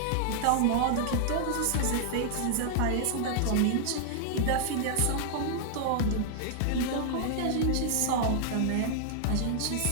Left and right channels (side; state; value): both; different; correlation 0.00